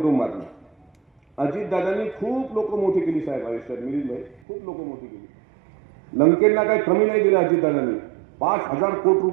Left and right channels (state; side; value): drops out; left; at 4.4 s